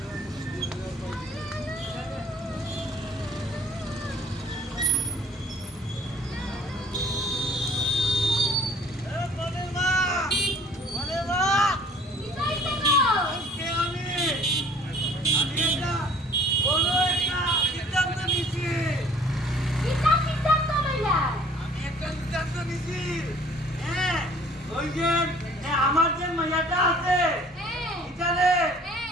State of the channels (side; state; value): both; normal; correlation 0.53